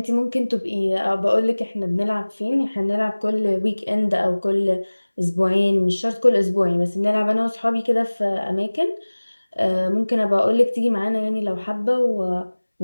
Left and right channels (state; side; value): inverted; both; correlation -1.00